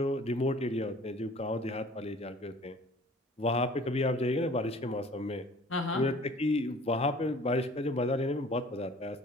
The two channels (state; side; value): normal; both; correlation 0.49